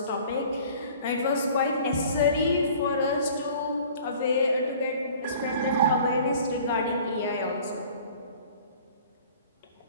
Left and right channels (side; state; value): both; inverted; correlation -0.49